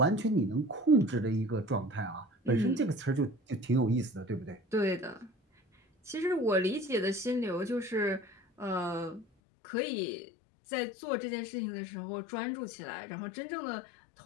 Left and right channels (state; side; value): drops out; right; at 9.2 s